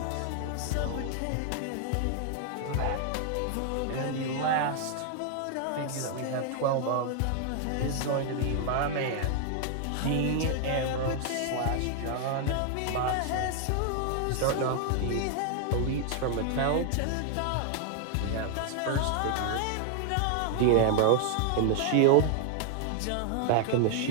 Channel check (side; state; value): both; different; correlation 0.00